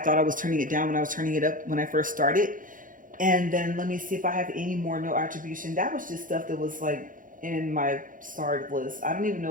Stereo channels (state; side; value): late; left; 0.39 ms